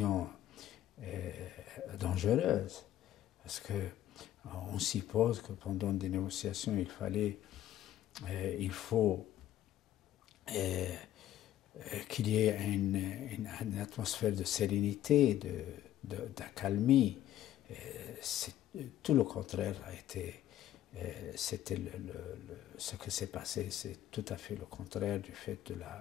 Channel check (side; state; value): right; quieter; 12.7 dB